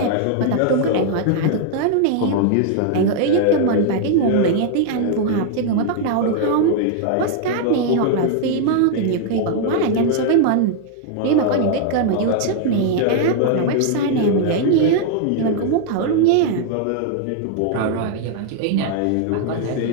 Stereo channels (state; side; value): different; both; correlation 0.00